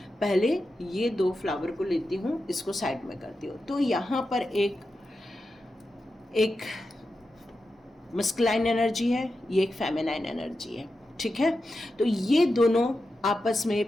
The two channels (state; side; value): normal; both; correlation 0.90